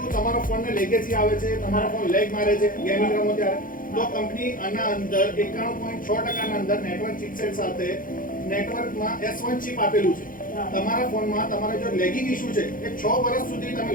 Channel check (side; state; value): right; late; 0.40 ms